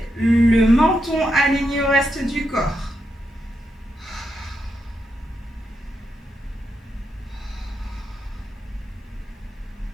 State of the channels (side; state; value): both; normal; correlation 0.84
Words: le menton aligné au reste du corps.